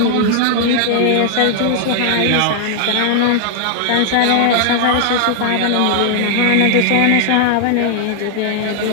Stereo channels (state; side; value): different; both; correlation 0.00